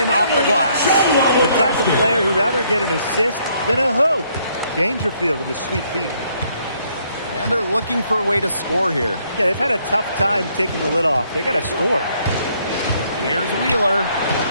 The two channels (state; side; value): inverted; both; correlation -0.68